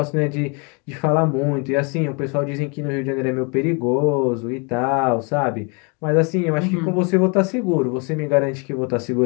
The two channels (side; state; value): right; quieter; 33.5 dB